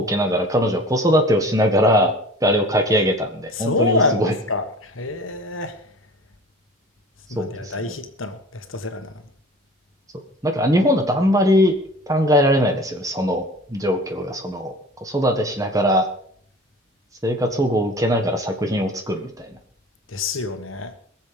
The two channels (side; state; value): both; normal; correlation 0.42